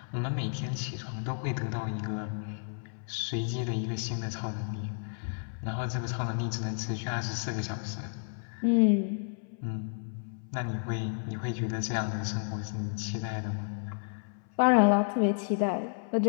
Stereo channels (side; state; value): right; silent; 57 dB below the other